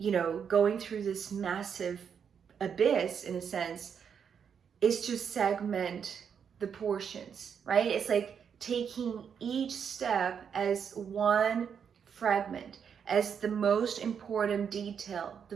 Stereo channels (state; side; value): quieter; left; 7.3 dB